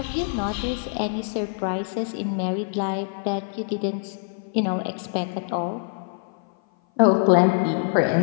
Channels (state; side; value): silent; right; 56 dB below the other